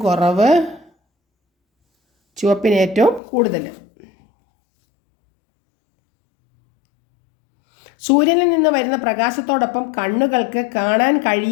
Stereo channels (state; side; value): drops out; right; at 3.2 s